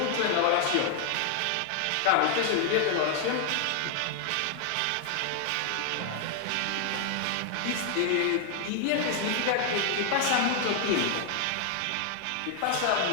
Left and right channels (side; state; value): both; different; correlation 0.00